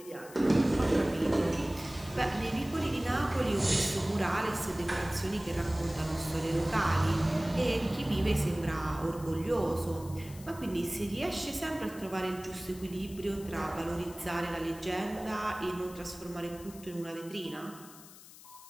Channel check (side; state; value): left; noise; hiss, 19 dB below the sound